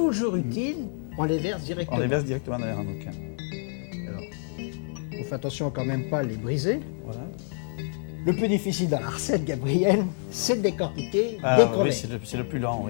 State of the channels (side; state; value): right; silent; 56 dB below the other